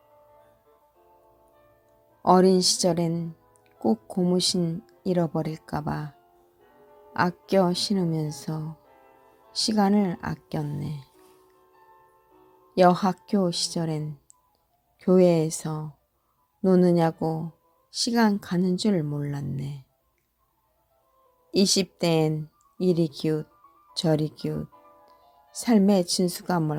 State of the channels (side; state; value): both; identical; correlation 1.00